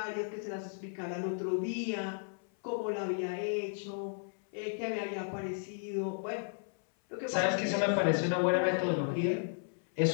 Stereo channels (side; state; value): right; silent; 55 dB below the other